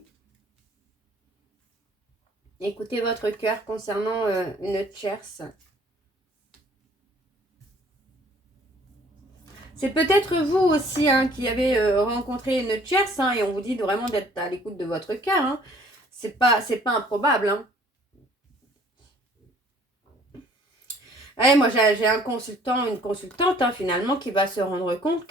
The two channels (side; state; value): both; normal; correlation 0.57